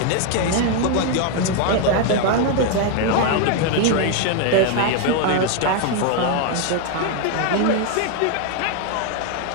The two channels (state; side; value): different; both; correlation 0.00